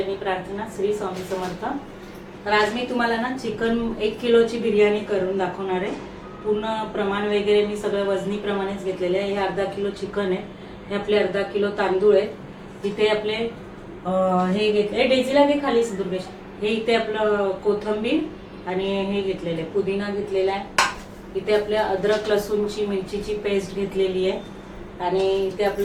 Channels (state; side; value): identical; both; correlation 1.00